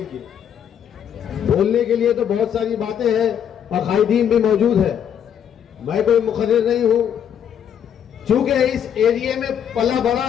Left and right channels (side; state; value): right; quieter; 8.9 dB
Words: की। बोलने के लिए तो बहुत सारी बातें हैं और कायदीन भी मौजूद है। मैं कोई मुखर्रिर नहीं हूं, चूंकि इस एरिया में पला बड़ा